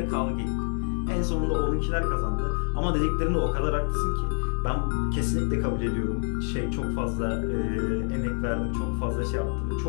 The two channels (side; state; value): right; silent; 60 dB below the other